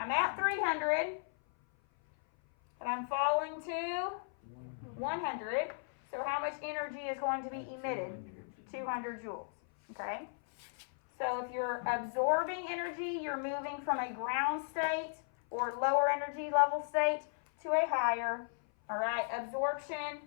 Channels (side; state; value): right; silent; 54 dB below the other